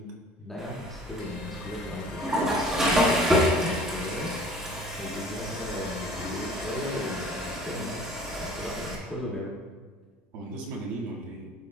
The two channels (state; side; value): normal; both; correlation 0.50